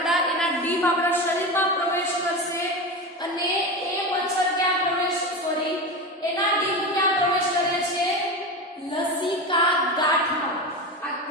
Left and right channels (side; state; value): both; normal; correlation 0.23